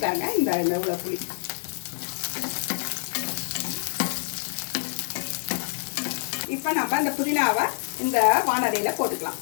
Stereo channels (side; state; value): right; silent; digital silence